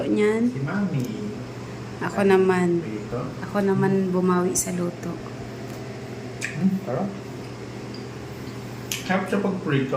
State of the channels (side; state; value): both; identical; correlation 1.00